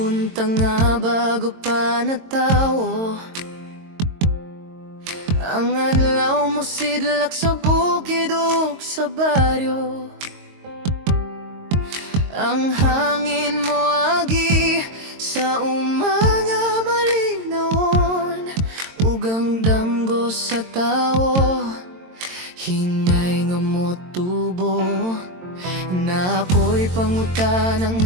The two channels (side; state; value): left; late; 22 ms